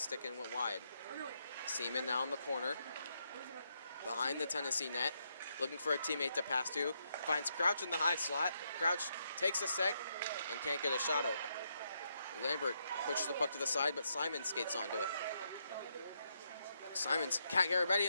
and went wide. Seaman now in the corner. Behind the Tennessee net. Looking for a teammate to pass to. Finds Crouch in the high slot. Crouch takes a sec and can't get a shot open. Lambert pushes the puck to the side, but Simon skates onto it. Simons, Kat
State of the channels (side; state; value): both; inverted; correlation -0.79